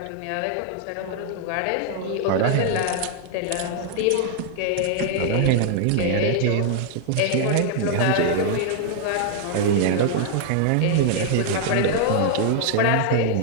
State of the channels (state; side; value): different; both; correlation 0.00